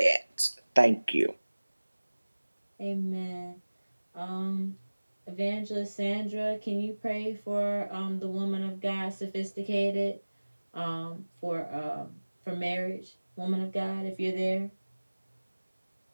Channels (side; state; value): both; inverted; correlation -1.00